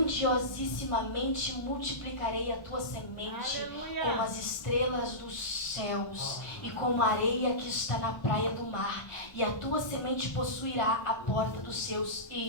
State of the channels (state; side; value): late; right; 1.1 ms